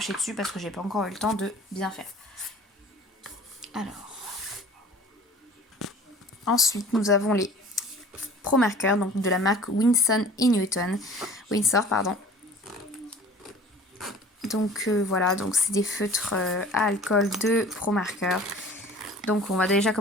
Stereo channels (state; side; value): normal; both; correlation 0.45